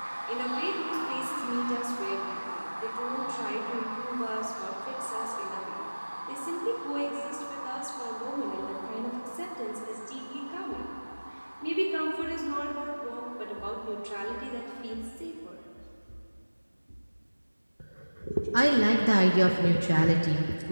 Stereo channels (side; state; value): both; inverted; correlation -1.00